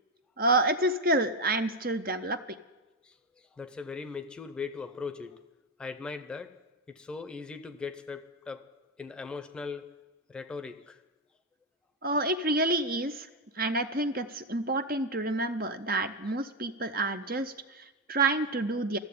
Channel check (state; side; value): normal; both; correlation 0.09